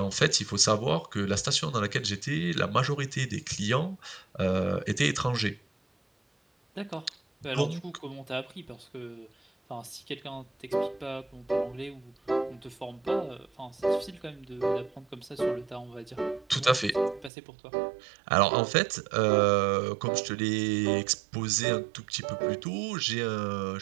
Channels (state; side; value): drops out; left; at 17.3 s